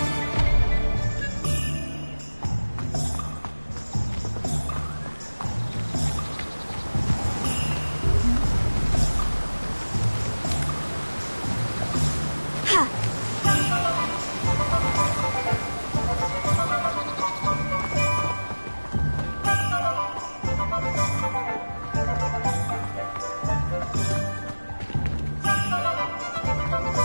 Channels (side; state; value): both; inverted; correlation -1.00